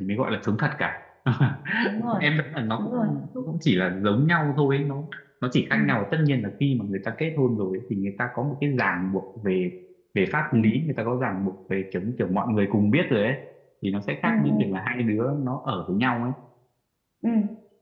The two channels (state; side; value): identical; both; correlation 1.00